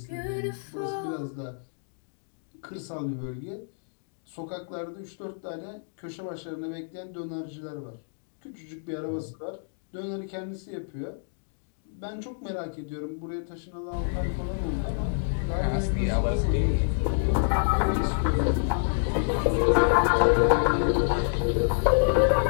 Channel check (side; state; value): right; silent; digital silence